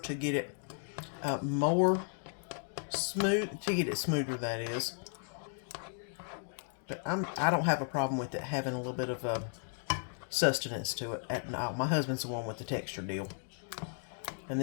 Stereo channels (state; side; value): silent; right; 54 dB below the other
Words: to get it more smooth, to get it smoother, that is. But I don't have a problem with it having a little bit of sustenance to it. No, my husband's the one with the texture deal. And